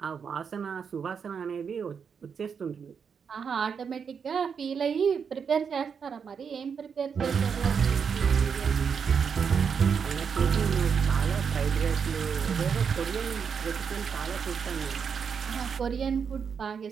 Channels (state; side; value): quieter; left; 6.5 dB